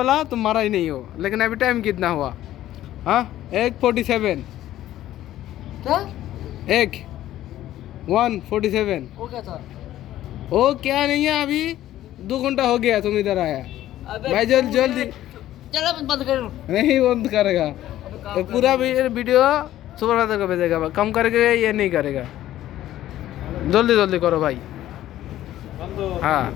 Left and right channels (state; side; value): quieter; right; 13.5 dB